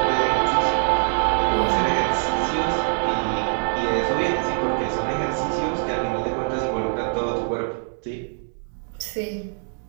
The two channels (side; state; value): left; silent; digital silence